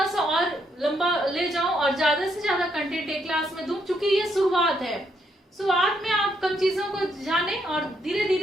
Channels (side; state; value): both; normal; correlation 0.75